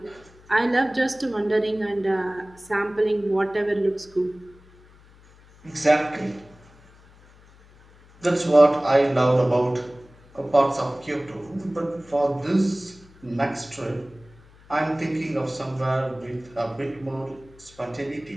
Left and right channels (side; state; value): left; noise; hum, 26 dB below the sound